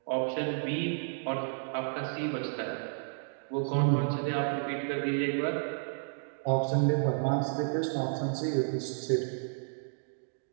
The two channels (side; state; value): left; silent; digital silence